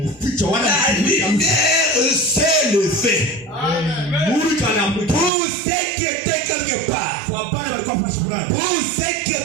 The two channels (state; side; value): drops out; left; at 5.3 s